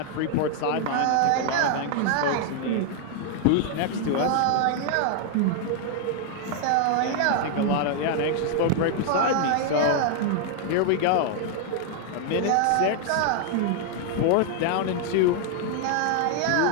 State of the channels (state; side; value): different; both; correlation 0.00